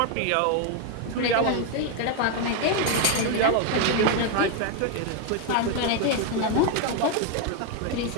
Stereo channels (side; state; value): both; different; correlation 0.01